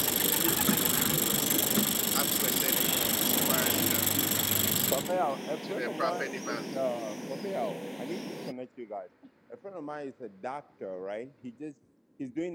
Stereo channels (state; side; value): identical; both; correlation 1.00